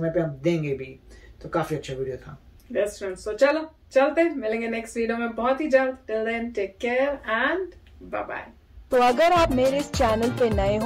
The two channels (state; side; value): identical; both; correlation 1.00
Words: पे हम देंगे भी। तो काफी अच्छा वीडियो था। बेस्ट फ्रेंड्स, तो चलो चलते, मिलेंगे नेक्स्ट वीडियो में बहुत ही जल्द। Till then take care and bye bye. तो अगर आप मेरे इस चैनल पे नए